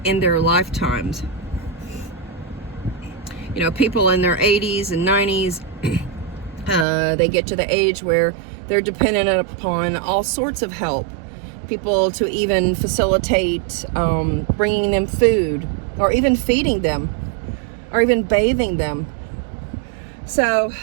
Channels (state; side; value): drops out; left; at 6.9 s